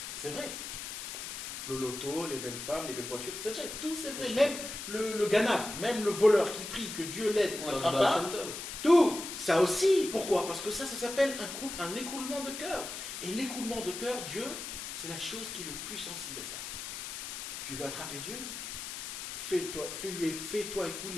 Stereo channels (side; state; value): left; noise; hiss, 7 dB below the sound